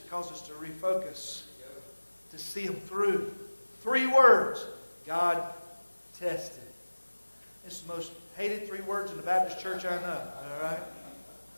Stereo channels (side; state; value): both; inverted; correlation -1.00